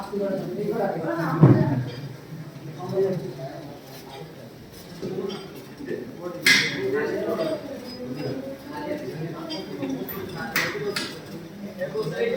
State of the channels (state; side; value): identical; both; correlation 1.00